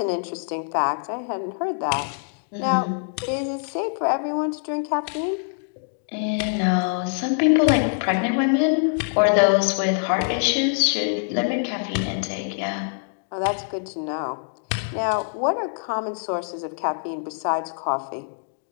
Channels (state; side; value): silent; right; digital silence